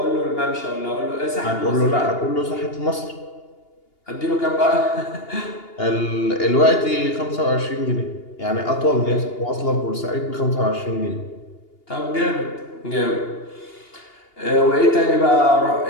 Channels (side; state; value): right; late; 2.8 ms